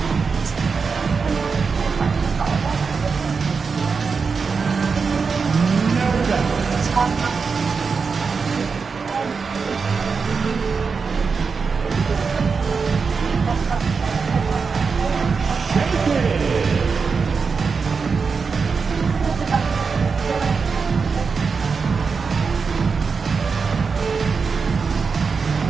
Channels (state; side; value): quieter; left; 5.2 dB